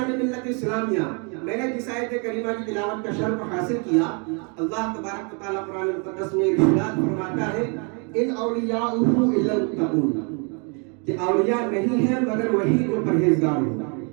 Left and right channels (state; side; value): quieter; left; 36.1 dB